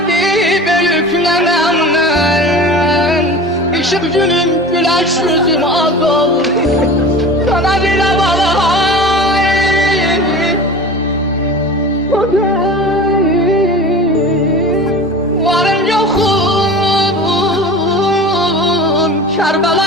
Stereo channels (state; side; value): normal; both; correlation 0.36